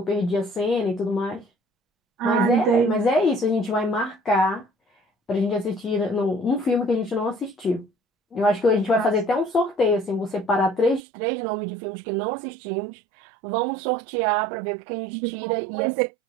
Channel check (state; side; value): drops out; left; at 11.0 s